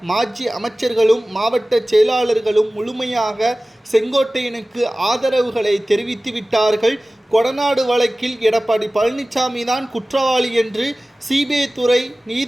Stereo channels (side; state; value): both; normal; correlation 0.97